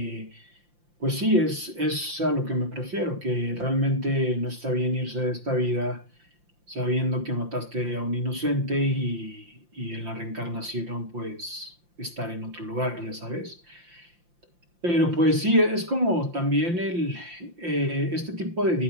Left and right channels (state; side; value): late; left; 5.8 ms